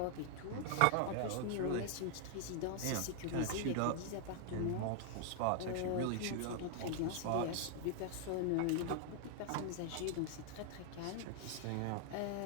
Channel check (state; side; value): different; both; correlation 0.00